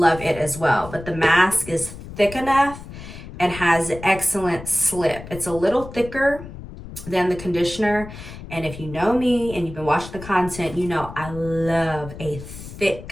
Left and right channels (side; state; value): left; noise; rumble, 13 dB below the sound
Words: it as well. But the mask is thick enough and has excellent slip. It's a little thicker than the conditioner. And if you know me and you've been watching the content, you know I love a